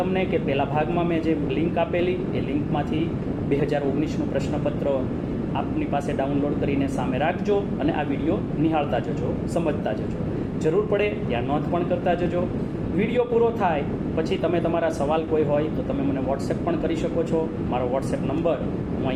કે પહેલા ભાગમાં મેં જે લિંક આપેલી એ લિંકમાંથી 2019નું પ્રશ્નપત્ર આપની પાસે ડાઉનલોડ કરીને સામે રાખજો અને આ વિડીયો નિહાળતા જજો, સમજતા જજો. જરૂર પડે ત્યાં નોંધ પણ કરતા જજો. વિડીયો પૂરો થાય પછી તમે તમારા સવાલ કોઈ હોય તો તમે મને વોટ્સએપ પણ કરી શકો છો. મારો વોટ્સએપ નંબર હું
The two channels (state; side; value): identical; both; correlation 1.00